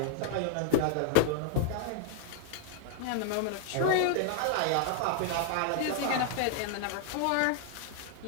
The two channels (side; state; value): both; different; correlation 0.00